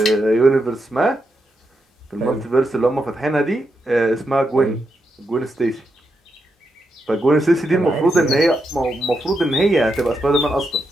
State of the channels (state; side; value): normal; both; correlation 0.84